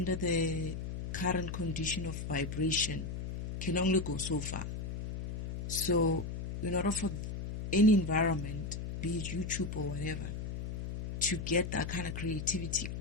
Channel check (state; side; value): noise; left; hum, 5 dB below the sound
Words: the current condition of vibration can only go so far. So, in order for any environment, be it YouTube or whatever, to get that kind of creativity